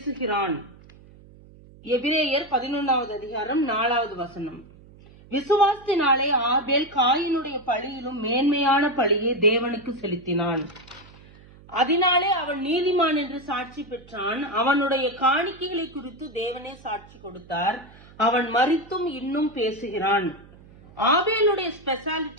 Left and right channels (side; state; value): right; noise; hum, 23 dB below the sound